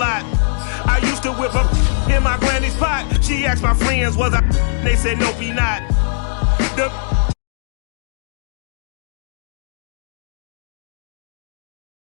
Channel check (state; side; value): silent; right; digital silence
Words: I used to whip up in my granny's pot. She asked my friends, was I? They said, nope, he not.